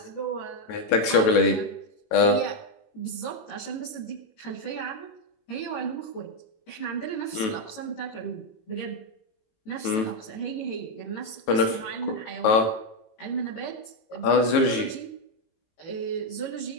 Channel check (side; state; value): right; late; 18 ms